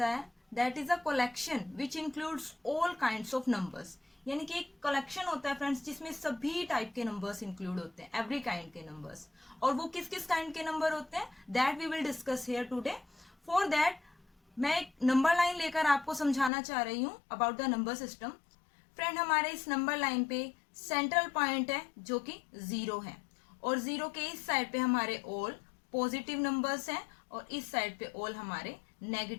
है that is a collection which includes all kinds of numbers, यानी कि एक कलेक्शन होता है फ्रेंड्स जिसमें सभी टाइप के नंबर्स इंक्लूड होते हैं, एवरी काइंड के नंबर्स। और वो किस किस काइंड के नंबर होते हैं that we will discuss here today. For that मैं एक नंबर लाइन लेकर आपको समझाना चाह रही हूँ about the number system. Friend, हमारे इस नंबर लाइन पे सेंट्रल पॉइंट है जो कि 0 है और 0 के इस साइड पे हमारे ऑल पॉजिटिव नंबर्स हैं और इस साइड पे ऑल हमारे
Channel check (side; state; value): right; drops out; at 16.5 s